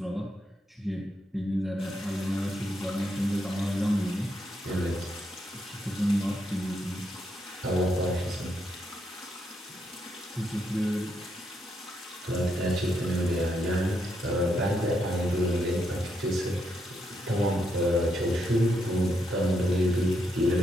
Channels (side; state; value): both; normal; correlation 0.79